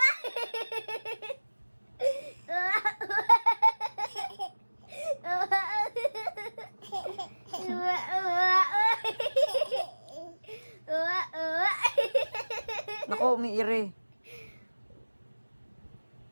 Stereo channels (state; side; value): inverted; both; correlation -1.00